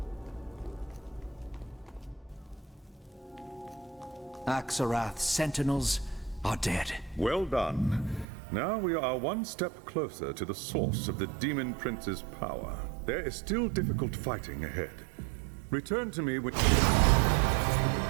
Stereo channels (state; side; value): drops out; left; at 8.2 s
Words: Axarath's sentinels are dead. Well done. Now we are one step closer to the source of the Demon Prince's power. There is still difficult fighting ahead. Return to me when...